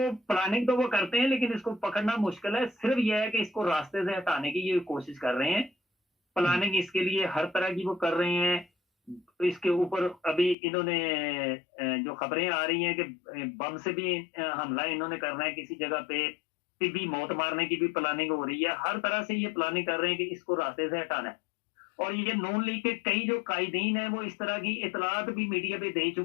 प्लानिंग तो वो करते हैं लेकिन इसको पकड़ना मुश्किल है। सिर्फ यह है कि इसको रास्ते से हटाने की ये कोशिश कर रहे हैं, प्लानिंग इसके लिए हर तरह की वो कर रहे हैं। तो इसके ऊपर अभी इन्होंने जो खबरें आ रही हैं कि बम से भी हमला इन्होंने करना है किसी जगह पे, भी मौत मारने की भी प्लानिंग हो रही है। हर तरह से ये प्लानिंग कर रहे हैं कि इसको रास्ते से हटाना है। और ये नून लीग के कई जो कायदीन है वो इस तरह की इतलात भी मीडिया पे दे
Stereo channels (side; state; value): right; drops out; at 10.6 s